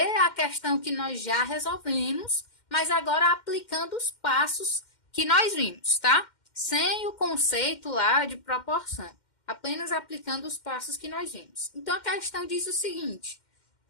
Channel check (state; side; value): late; right; 2.1 ms